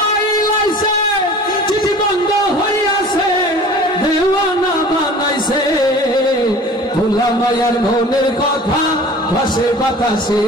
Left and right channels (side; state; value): both; normal; correlation 0.43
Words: আছে চিঠি বন্ধ হইয়াছে দেওয়ানা বানাইছে পোলা মাইয়ার মনের কথা ভাসে বাতাসে